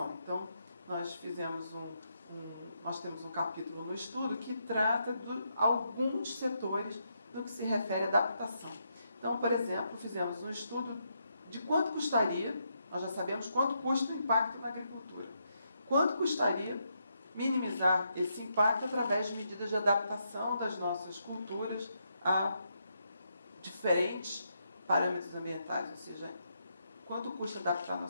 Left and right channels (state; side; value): inverted; both; correlation -0.79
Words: Então, nós temos um capítulo no estudo que trata de alguns setores no que se refere à adaptação. Então, por exemplo, fizemos um estudo de quanto custaria, nós já sabemos quanto custa o impacto na agricultura, quanto custaria minimizar esse impacto através de medidas de adaptação das nossas culturas a diferentes parâmetros ambientais, ou seja, quanto custa adaptar a